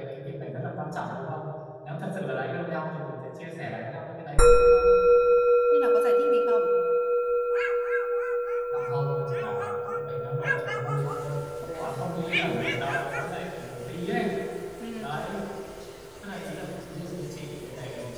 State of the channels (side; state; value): both; identical; correlation 1.00